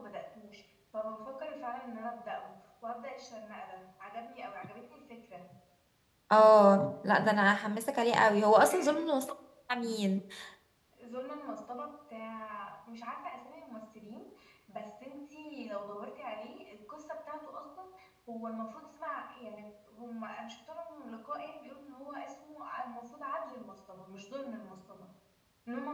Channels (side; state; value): both; identical; correlation 1.00